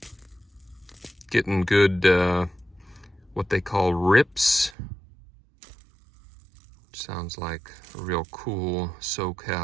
getting good, what they call rips. Sounds like a real cool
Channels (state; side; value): drops out; left; at 4.8 s